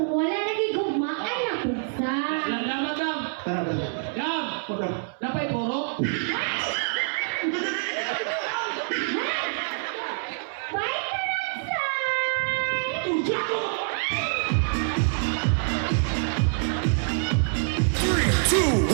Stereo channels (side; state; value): left; silent; 61 dB below the other